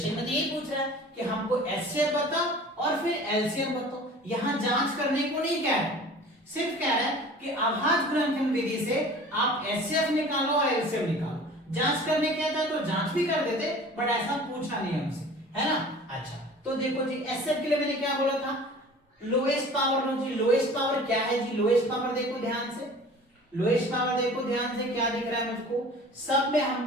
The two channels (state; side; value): normal; both; correlation 0.43